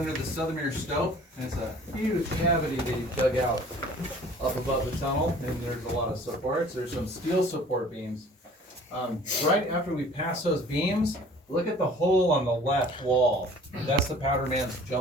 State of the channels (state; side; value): normal; both; correlation 0.49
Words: the Southermere Stope. It's a huge cavity they dug out up above the tunnel, and there's a lot of supports. There's some steel support beams. Right after we pass those beams, look at the hole on the left wall. That's the powder man's